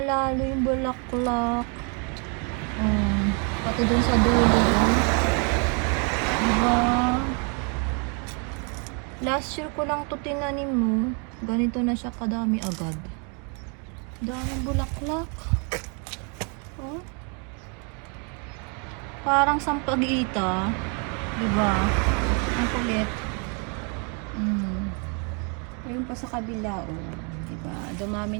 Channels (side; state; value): left; quieter; 36.2 dB